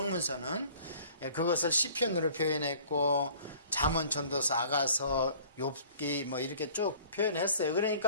그것을 시편으로 표현했고 잠언, 전도서, 아가서, 욥기 뭐 이렇게 쭉 표현했어요.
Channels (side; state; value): both; inverted; correlation -0.52